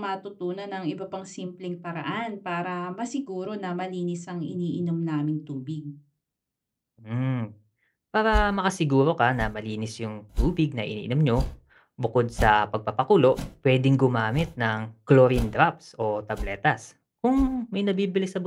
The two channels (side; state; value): both; identical; correlation 1.00